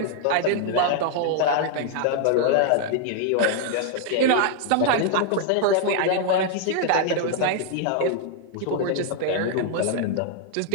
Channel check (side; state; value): both; different; correlation 0.00